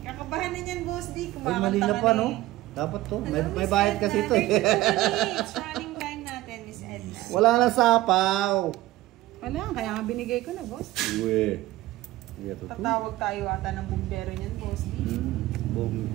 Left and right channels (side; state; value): left; quieter; 16.8 dB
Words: Kakabahan na niyan, Boss D. Ay, Kumakanta mali na ka pa, na no? eh. Dapat to. Hello, May Miss bayad Edna. kasi ito eh. 32 minutes. Running time natin, Miss Edna. Wala na sapaw. Wala, kaya nga binigay ko na, Boss. Uwe. Hindi ito to. Tatawag tayo ata ng bumbero niyan, Boss D. Boom.